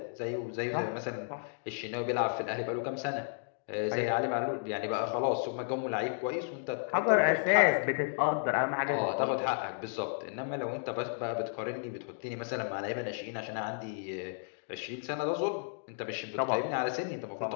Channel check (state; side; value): silent; right; digital silence